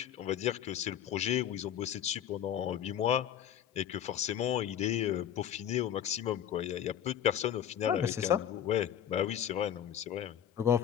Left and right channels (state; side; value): quieter; right; 10.1 dB